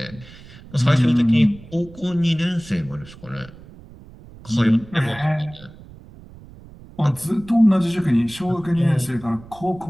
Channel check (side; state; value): right; noise; rumble, 20 dB below the sound